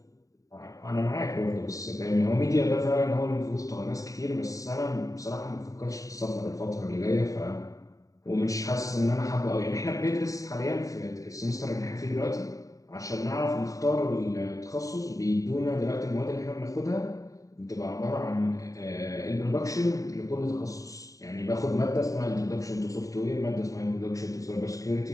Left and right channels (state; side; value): late; right; 0.16 ms